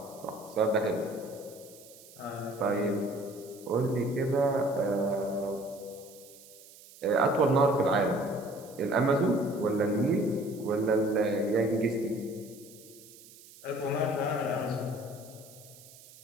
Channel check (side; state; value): right; noise; hiss, 21 dB below the sound